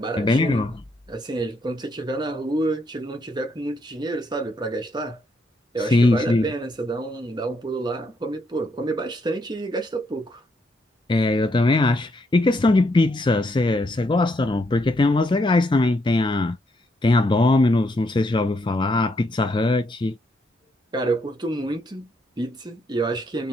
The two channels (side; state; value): both; normal; correlation 0.75